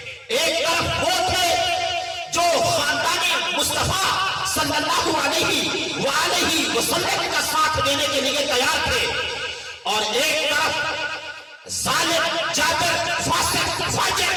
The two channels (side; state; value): both; identical; correlation 1.00